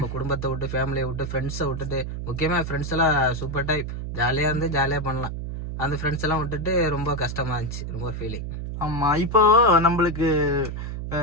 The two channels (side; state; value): right; noise; hum, 6 dB below the sound